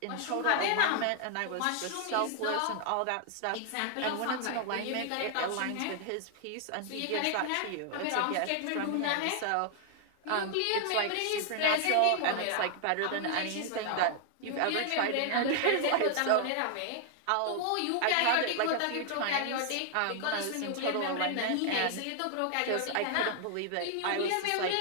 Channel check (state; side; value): different; both; correlation 0.00